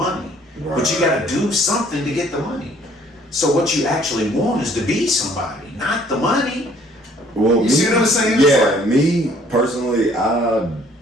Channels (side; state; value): both; normal; correlation 0.59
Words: Right. But you gotta do something to get the money. So what you actually want is to be somebody, not the money. Well, You see what I'm saying? Yeah, me personally, I